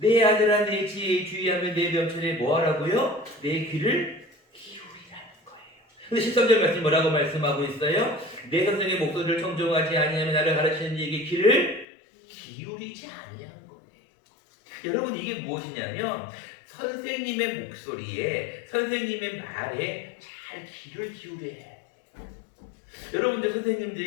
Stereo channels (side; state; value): right; drops out; at 11.9 s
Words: 아들아 내 지혜에 주의하며 내 명철에 뭐하라고요? 내 귀를 기울이라는 거예요. 근데 13절 말씀 뭐라고 말씀하고 있어요? 내 선생의 목소리를 청종하지 아니하며 나를 가르치는 이에게 귀를 기울이지 아니한 거예요. 여러분 이게 무엇이냐면 선생님의 목소리에 선생님의 말에 잘 귀를 기울여야 해요. 여러분들